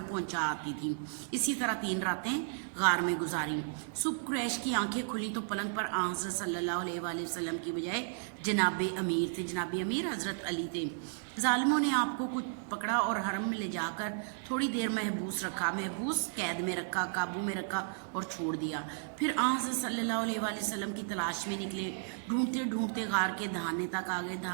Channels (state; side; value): silent; left; digital silence